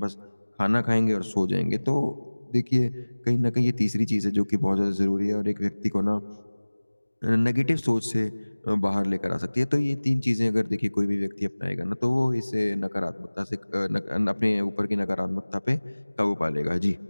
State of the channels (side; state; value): both; inverted; correlation -1.00